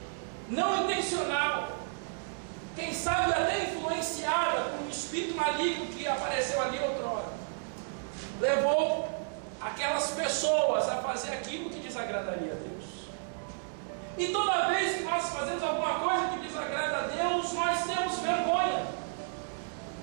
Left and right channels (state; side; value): silent; left; digital silence